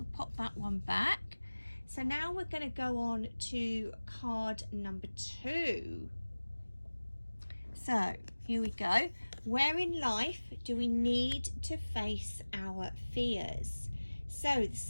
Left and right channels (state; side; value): inverted; both; correlation -1.00